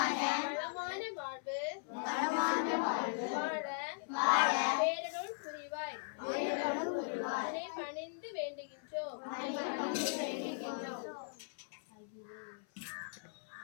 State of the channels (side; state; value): right; silent; 52 dB below the other